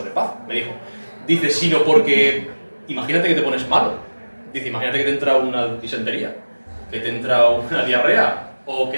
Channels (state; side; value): inverted; both; correlation -1.00